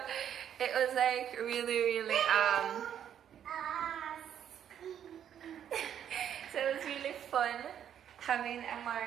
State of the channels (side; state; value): left; quieter; 9.5 dB